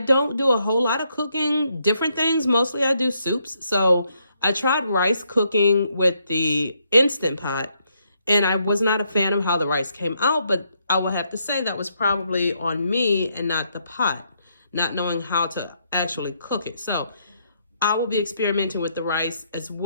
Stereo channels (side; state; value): both; inverted; correlation -0.75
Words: do a whole lot of cooking, different things. Mostly I do soups. So I tried rice cooking with the Instant Pot, and I was not a fan of how the rice came out, but I will have to say that was probably on me and not the pot, not knowing how to actually cook it. So I will be experimenting with the rice as